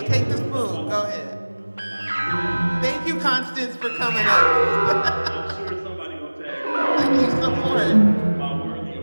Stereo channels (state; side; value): inverted; both; correlation -1.00